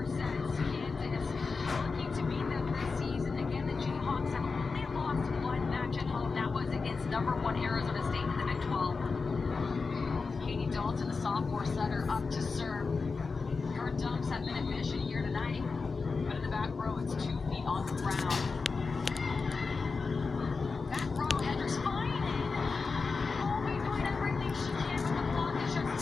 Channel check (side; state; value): right; quieter; 4.5 dB